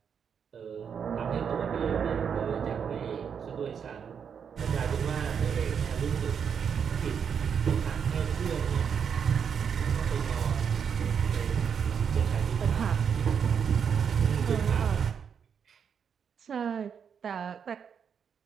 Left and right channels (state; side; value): quieter; left; 7.2 dB